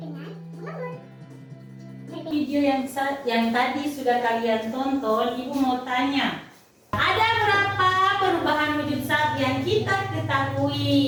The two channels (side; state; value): both; identical; correlation 1.00